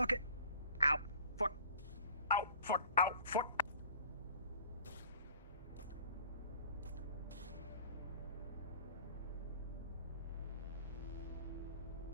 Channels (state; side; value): inverted; both; correlation -0.49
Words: it. Ow. Fuck. Ow. Fuck. Ow. Fuck.